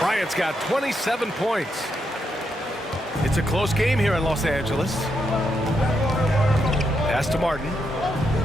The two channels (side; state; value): both; normal; correlation 0.81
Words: got 27 points. It's a close game here in Los Angeles. Pass to Martin.